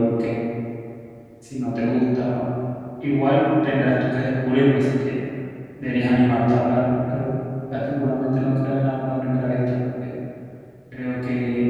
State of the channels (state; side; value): identical; both; correlation 1.00